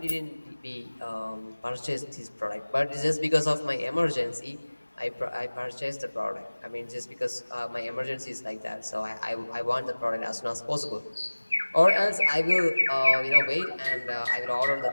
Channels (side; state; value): both; inverted; correlation -1.00